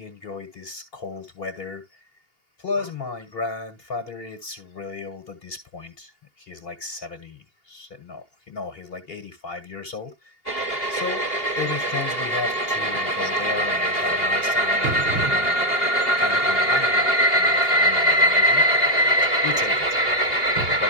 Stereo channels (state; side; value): late; right; 2.8 ms